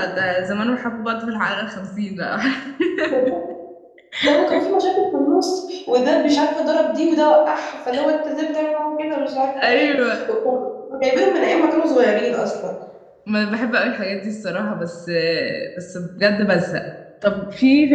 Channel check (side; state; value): both; identical; correlation 1.00